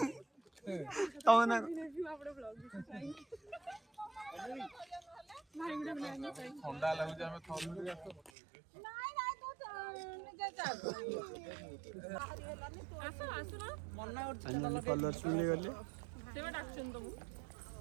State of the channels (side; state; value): left; drops out; at 8.3 s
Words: तवना आपड़े ब्लॉग भाई गुडे ब्लॉग ठंडा लागु जे हम थम नाइ नाइ तो निजे जा आसो आसो ना मन्ना और कलर सुनले गले सेवा डाक्शन तुम